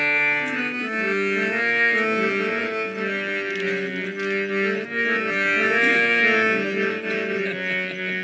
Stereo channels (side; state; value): both; identical; correlation 1.00